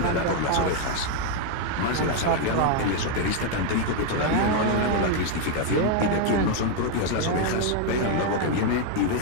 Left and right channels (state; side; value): different; both; correlation 0.01